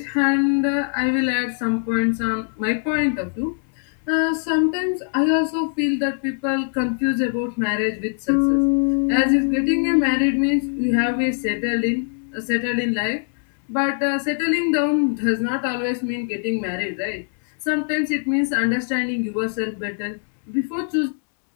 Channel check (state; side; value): silent; right; 64 dB below the other